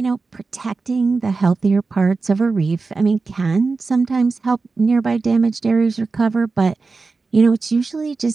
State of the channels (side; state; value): left; quieter; 4.1 dB